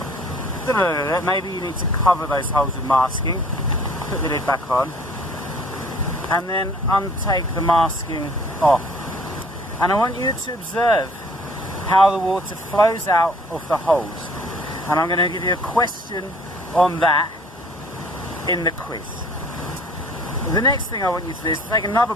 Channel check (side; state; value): both; normal; correlation 0.54